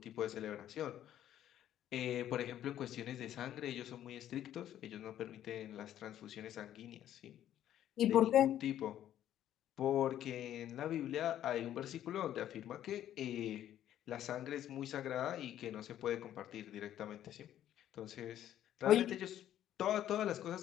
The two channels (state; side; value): quieter; right; 11.6 dB